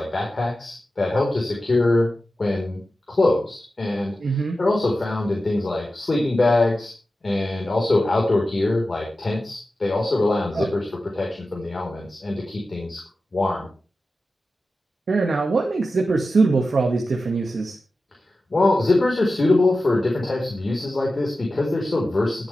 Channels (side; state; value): both; normal; correlation 0.93